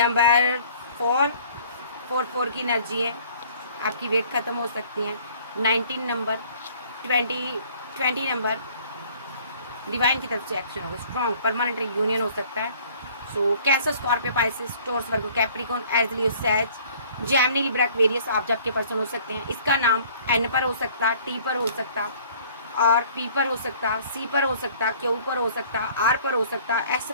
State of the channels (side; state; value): both; inverted; correlation -0.54